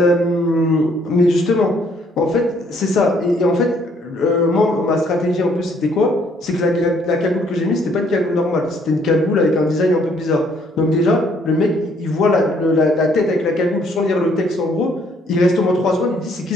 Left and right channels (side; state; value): both; normal; correlation 0.65